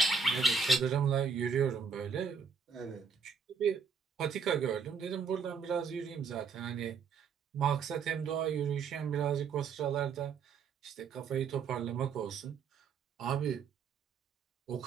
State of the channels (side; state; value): left; quieter; 5.7 dB